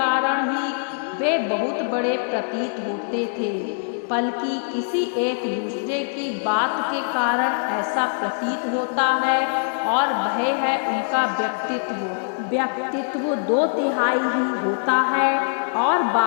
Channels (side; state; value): right; silent; digital silence